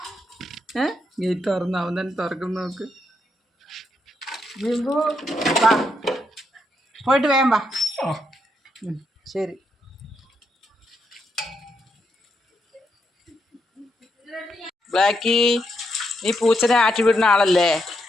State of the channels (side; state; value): both; normal; correlation 0.80